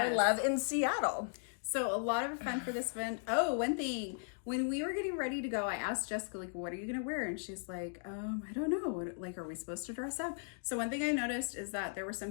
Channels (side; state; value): right; silent; digital silence